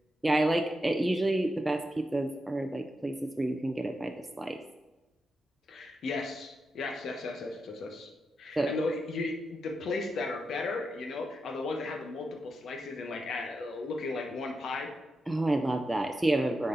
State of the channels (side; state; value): both; normal; correlation 0.87